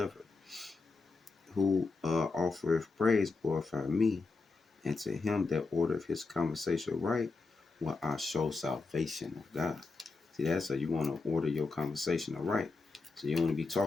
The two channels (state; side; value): quieter; right; 4.0 dB